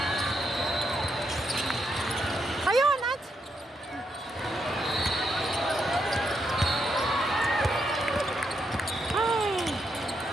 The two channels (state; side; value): normal; both; correlation 0.80